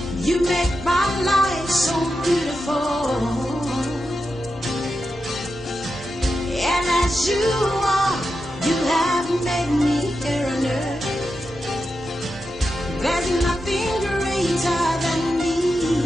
You make my life so beautiful. And as you are, you have made me here on earth. There's nothing greater than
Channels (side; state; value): both; normal; correlation 0.89